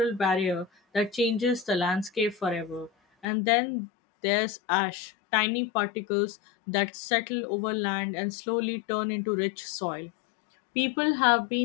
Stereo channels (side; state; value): right; drops out; at 3.2 s